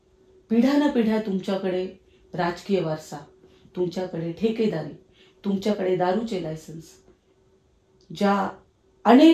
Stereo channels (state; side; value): identical; both; correlation 1.00